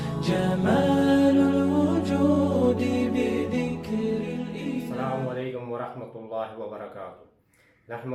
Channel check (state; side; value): identical; both; correlation 1.00